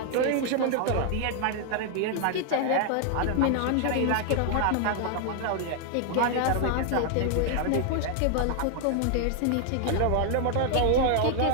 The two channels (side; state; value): both; different; correlation 0.00